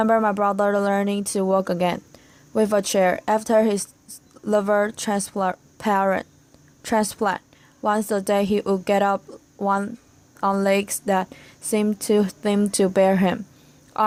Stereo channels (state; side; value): identical; both; correlation 1.00